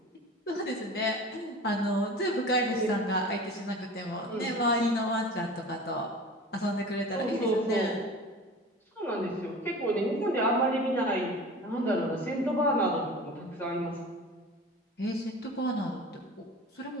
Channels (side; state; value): both; normal; correlation 0.37